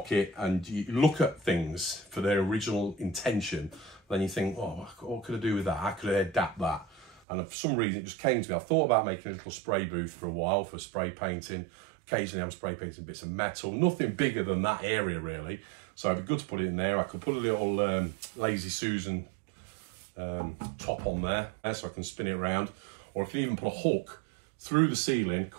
and you look at things for their original intention, then you think, oh, what could I do with that? How could I adapt that? And for some reason, it just came to me. I've thought about making a little spray booth for a while for spray painting. Occasionally, I'm spray painting bits of metal. Nothing bigger than that area, really. So it'd be good to put it in there. I could put a little Lazy Susan top on there so I can spin it around. Or I can even put a hook through the ceiling,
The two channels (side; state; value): left; drops out; at 7.2 s